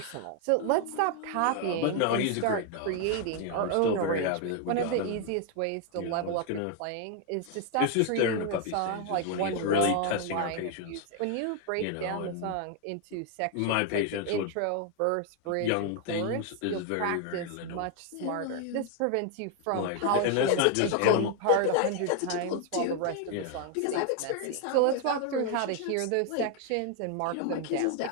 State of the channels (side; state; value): both; different; correlation 0.00